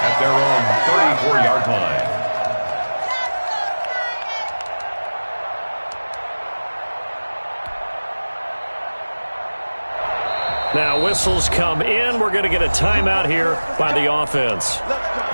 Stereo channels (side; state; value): both; inverted; correlation -1.00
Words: at their own 34-yard line. Now whistles come in. We're going to get a timeout here by the offense.